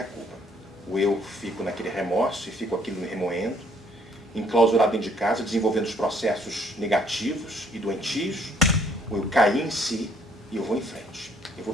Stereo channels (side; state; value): both; normal; correlation 0.64